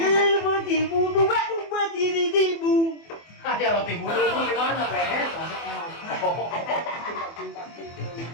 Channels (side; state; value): right; late; 24 ms